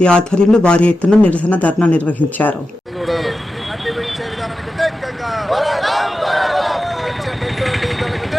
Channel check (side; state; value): both; normal; correlation 0.92